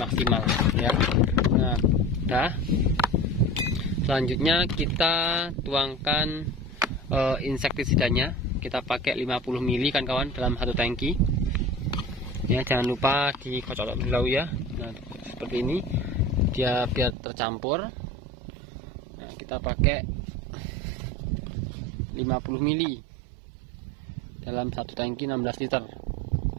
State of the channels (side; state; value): left; drops out; at 17.1 s